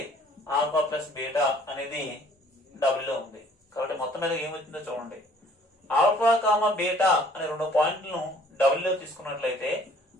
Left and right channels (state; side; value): normal; both; correlation 0.57